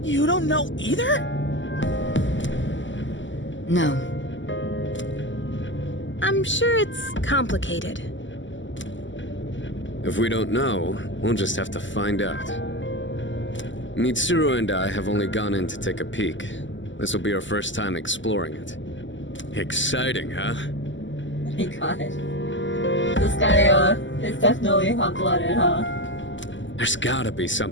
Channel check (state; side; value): late; right; 0.54 ms